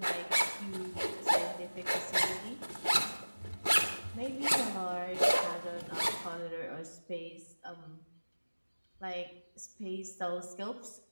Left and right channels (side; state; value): both; inverted; correlation -1.00